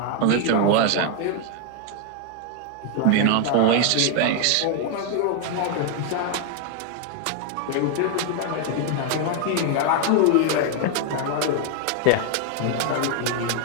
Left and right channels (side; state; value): both; different; correlation 0.00